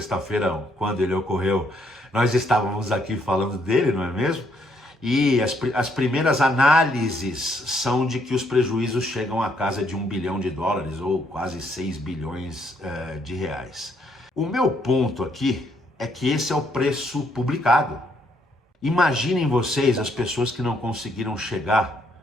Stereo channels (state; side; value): normal; both; correlation 0.71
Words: quando ele ocorreu, nós estávamos aqui falando dele, não é mesmo? E as primeiras análises são de que os prejuízos chegam à casa de $1 bilhão, ou quase 6 bilhões de reais. O meu ponto aqui é que esse é o preço publicado. Imaginem vocês as pessoas que não conseguiram